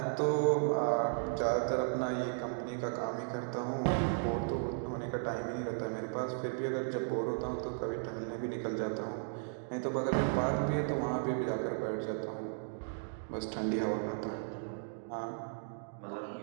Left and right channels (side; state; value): left; silent; digital silence